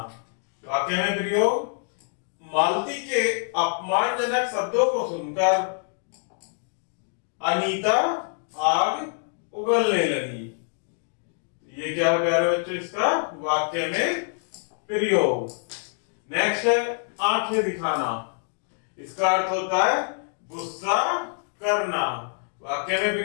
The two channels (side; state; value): right; silent; 61 dB below the other